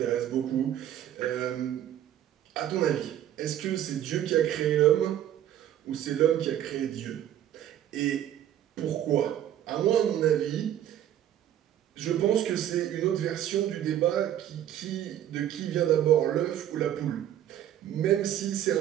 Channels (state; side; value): quieter; left; 11.2 dB